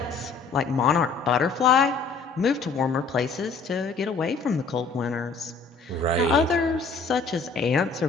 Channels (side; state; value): right; quieter; 4.6 dB